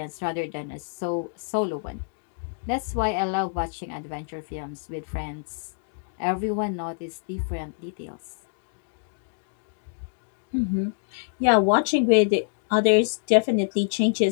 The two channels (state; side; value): silent; right; digital silence